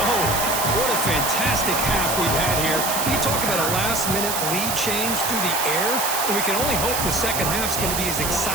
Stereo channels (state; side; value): noise; right; hiss, 1 dB below the sound